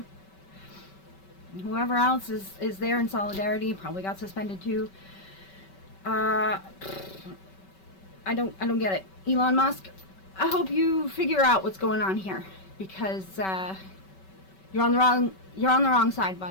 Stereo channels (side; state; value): right; late; 5.2 ms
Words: Whoever else is there in solidarity probably got suspended too. I don't get it. Elon Musk, I hope you figure out what's going on here. because you're on the wrong side,